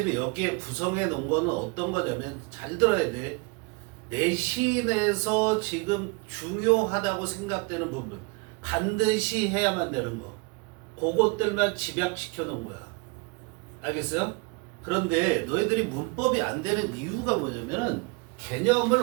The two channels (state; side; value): quieter; left; 29.3 dB